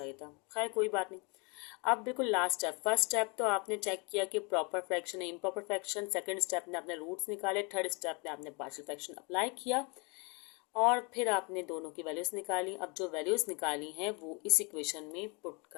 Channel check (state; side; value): quieter; right; 31.4 dB